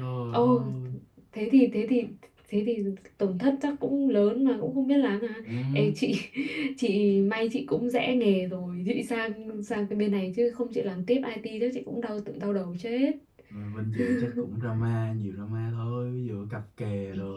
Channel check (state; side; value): identical; both; correlation 1.00